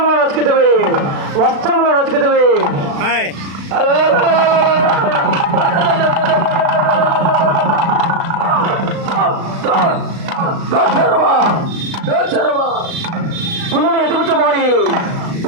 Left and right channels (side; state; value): left; late; 36 ms